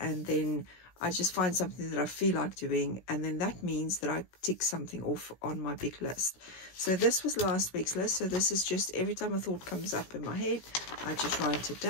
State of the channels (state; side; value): late; right; 16 ms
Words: then I just find something that I feel like doing, and then that means that I tick something off on my big list. So this was last week's list. So this is just every time a thought comes up in my head, I just write it